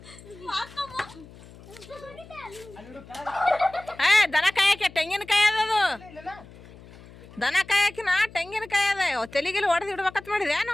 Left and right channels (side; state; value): left; noise; hum, 20 dB below the sound